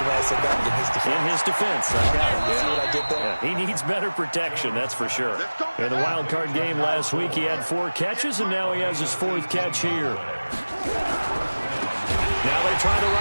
way I said that? In his defense. In his defense. I got it. You see what I did there? Yeah, he needs better protection, that's for sure. In the wild card game last week, he had 4 catches, and now he has his 4th catch here. Now they try the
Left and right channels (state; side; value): inverted; both; correlation -1.00